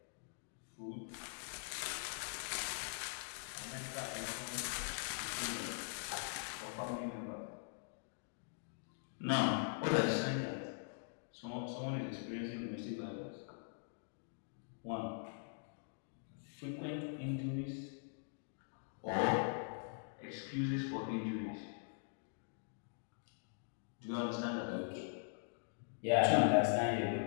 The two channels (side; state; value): right; silent; digital silence